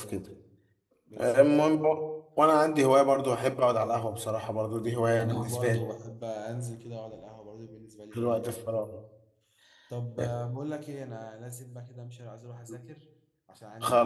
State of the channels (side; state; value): both; identical; correlation 1.00